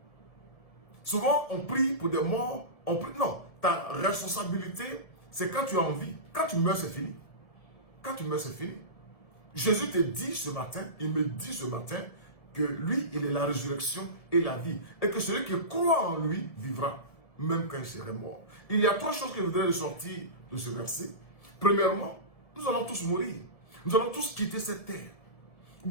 Souvent, on prie pour des morts. On prie, non, ta responsabilité, c'est quand tu es en vie. Quand tu meurs, c'est fini. Quand tu meurs, c'est fini. Jésus te dit ce matin, il me dit ce matin, que lui, il est la résurrection et la vie. Et que celui qui croit en lui vivra, même quand il serait mort. Il y a trois choses que je voudrais ressortir de ce verset. Premièrement, nous allons tous mourir. Nous allons tous quitter cette terre.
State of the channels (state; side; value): late; right; 1.7 ms